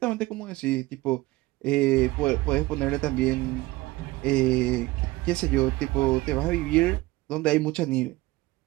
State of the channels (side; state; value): left; quieter; 19.8 dB